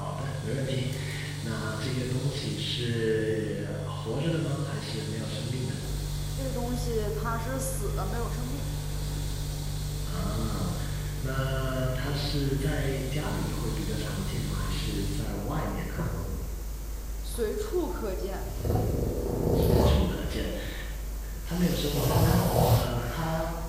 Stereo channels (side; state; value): both; identical; correlation 1.00